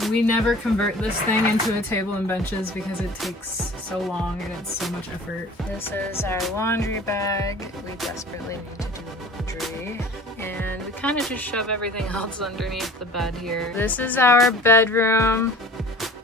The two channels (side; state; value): both; normal; correlation 0.43